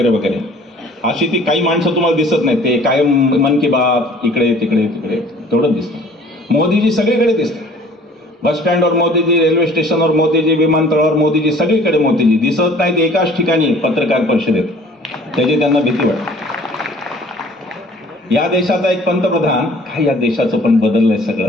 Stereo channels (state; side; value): normal; both; correlation 0.51